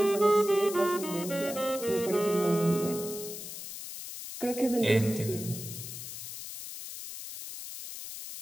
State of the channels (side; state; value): left; noise; hiss, 9 dB below the sound